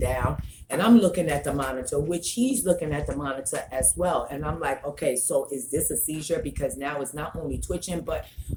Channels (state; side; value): identical; both; correlation 1.00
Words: down. And I'm looking at the monitor, which he's looking at the monitor as well. And I'm like, okay, so is this a seizure? Because now it's not only twitching, but